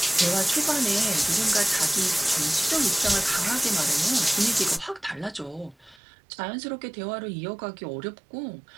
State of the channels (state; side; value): drops out; left; at 6.0 s